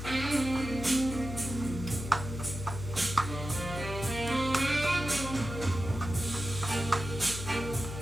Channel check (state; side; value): noise; left; hum, 7 dB below the sound